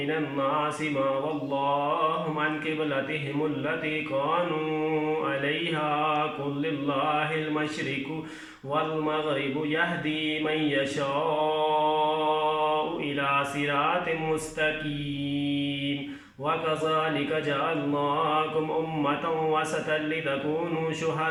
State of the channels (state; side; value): identical; both; correlation 1.00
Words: मा वल्लाहुम अन क़िबलतिहिमुल्लती कानू अलैहा क़ुल लिल्लाहिल मशरिक़ु वल मग़रिबु यहदी मन यशाउ इला सिरातिम मुस्तक़ीम वकज़ालिक जअलनाकुम उम्मतन वसतन लितकूनू